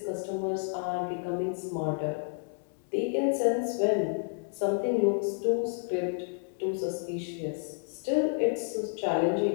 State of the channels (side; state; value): right; silent; digital silence